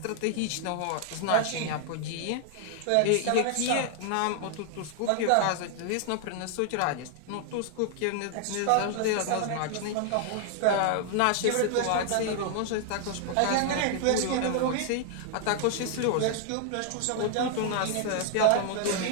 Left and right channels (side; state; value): both; different; correlation 0.00